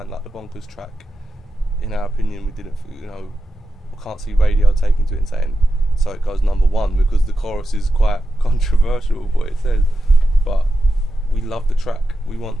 like the Bonkers track. In our opinion, we didn't. You know, we can't see radio taking to it and saying, so it goes #1, because the chorus is quite controversial what it says. But we love the track.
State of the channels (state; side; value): normal; both; correlation 0.90